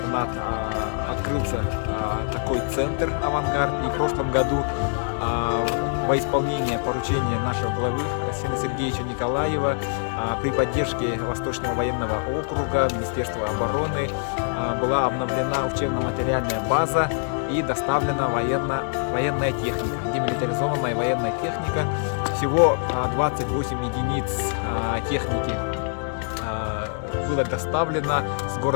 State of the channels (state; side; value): silent; right; 62 dB below the other